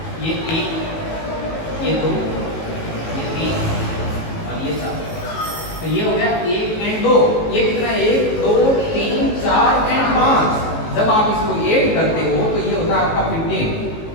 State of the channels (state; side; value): late; right; 18 ms